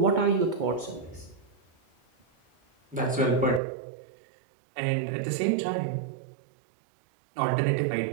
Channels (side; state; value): left; drops out; at 3.6 s